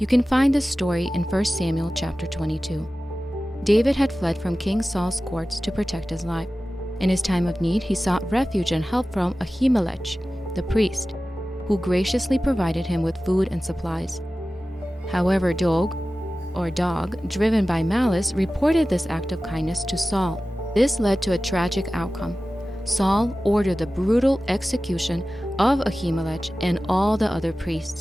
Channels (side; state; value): both; normal; correlation 0.96